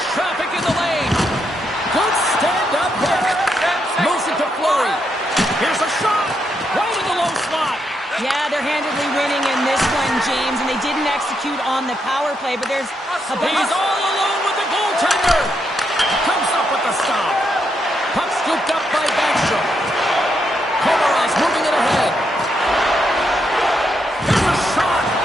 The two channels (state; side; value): normal; both; correlation 0.80